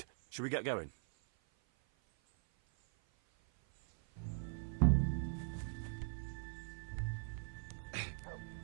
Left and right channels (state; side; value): silent; left; 50 dB below the other